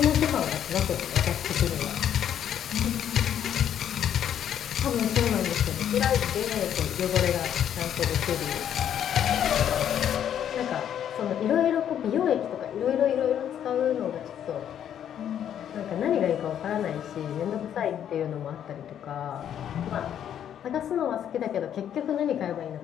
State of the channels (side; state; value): right; quieter; 9.8 dB